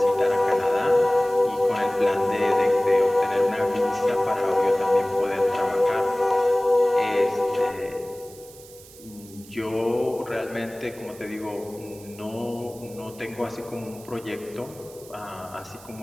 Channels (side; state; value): right; noise; hiss, 21 dB below the sound